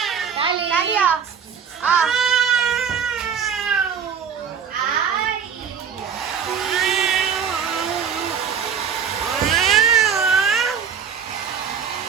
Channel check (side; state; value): left; quieter; 7.1 dB